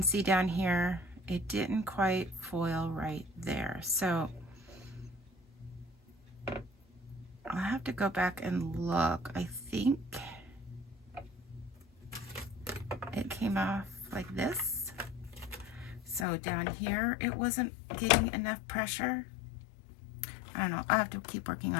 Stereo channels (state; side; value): drops out; right; at 16.2 s